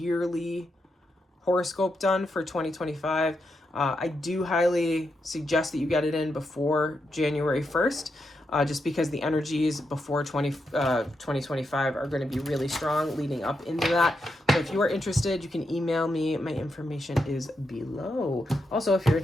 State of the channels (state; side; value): normal; both; correlation 0.84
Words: horoscope done for 2025. I do highly suggest that you get it in before January 1st, just because the energies before 2025 are going to be really strong leading up into that. So if you are interested, you can email me. My information is below. Also, if you're